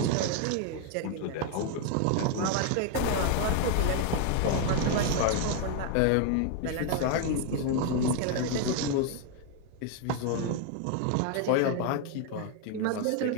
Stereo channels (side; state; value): both; different; correlation 0.00